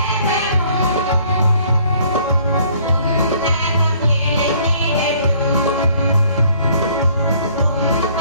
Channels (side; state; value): both; inverted; correlation -0.59